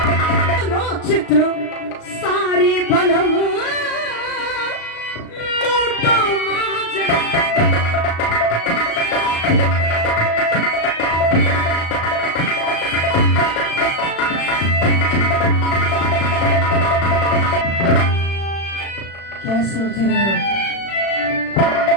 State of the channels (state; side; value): late; right; 36 ms